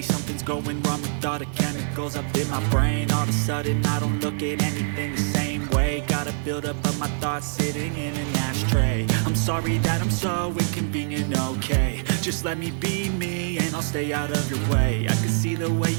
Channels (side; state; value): left; silent; digital silence